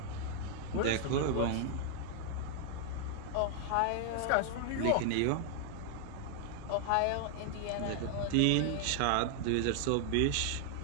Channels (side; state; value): both; different; correlation 0.00